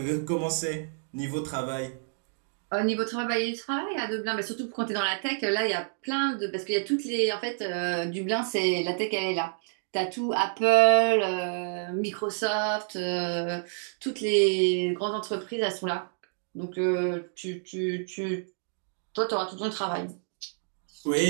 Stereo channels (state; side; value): silent; left; digital silence